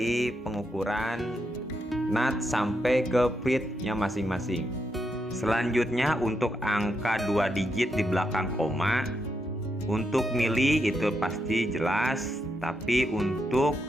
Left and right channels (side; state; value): both; normal; correlation 0.82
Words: pengukuran nut sampai ke feednya masing-masing. Selanjutnya untuk angka 2 digit di belakang koma, untuk mili itu pasti jelas, tapi untuk